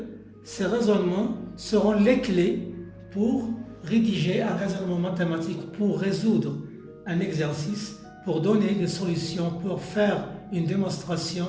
ces raisonnements seront les clés pour rédiger un raisonnement mathématique, pour résoudre un exercice, pour donner des solutions, pour faire une démonstration,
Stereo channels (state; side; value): identical; both; correlation 1.00